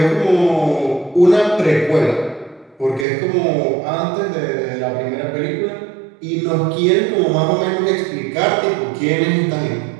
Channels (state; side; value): drops out; left; at 3.1 s